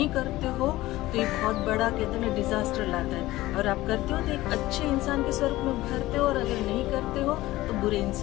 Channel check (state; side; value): quieter; right; 17.3 dB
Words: करते हो तो ये बहुत बड़ा कहते हैं ना डिजास्टर लाता है। और आप करते हो तो एक अच्छे इंसान के स्वरूप में उभरते हो, और अगर नहीं करते हो तो बुरे